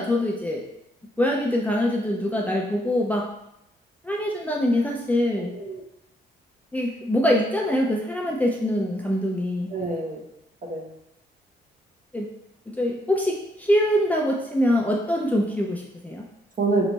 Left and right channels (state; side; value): normal; both; correlation 0.74